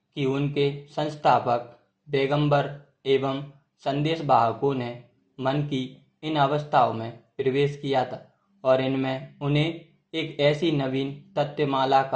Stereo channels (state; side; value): identical; both; correlation 1.00